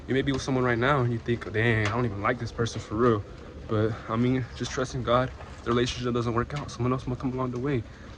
You may be with someone right now and you think, dang, I don't even like this person for real. But I mean, just trust in God. If the relationship doesn't work out, someone else will come along the way.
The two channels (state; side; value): identical; both; correlation 1.00